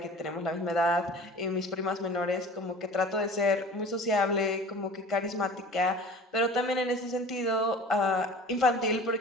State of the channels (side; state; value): both; normal; correlation 0.41